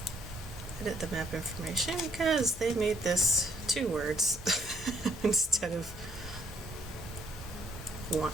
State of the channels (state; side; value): normal; both; correlation 0.68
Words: edit the map information because they made this 2 words instead of 1.